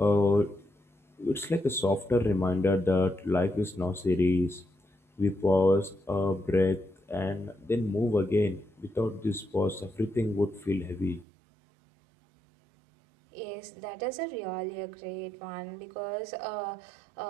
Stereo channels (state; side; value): drops out; left; at 11.2 s